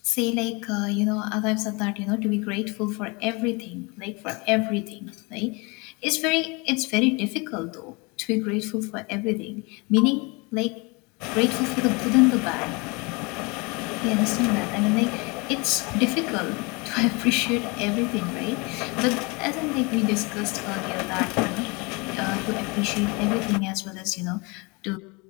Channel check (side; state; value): right; quieter; 28.1 dB